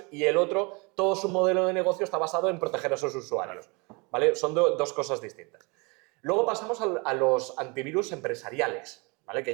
y el otro, todo su modelo de negocio está basado en proteger a sus usuarios, ¿vale? Son dos cosas distintas. Luego pasamos a los antivirus empresariales, ¿vale? Que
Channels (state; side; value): quieter; left; 29.2 dB